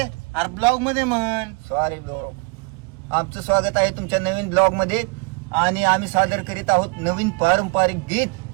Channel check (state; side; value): quieter; left; 31.4 dB